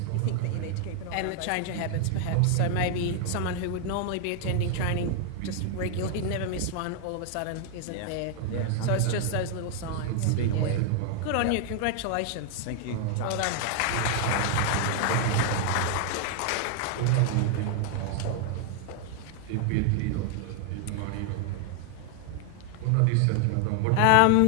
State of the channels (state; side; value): different; both; correlation 0.00